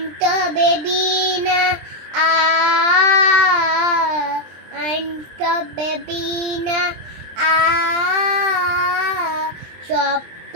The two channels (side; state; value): left; late; 23 ms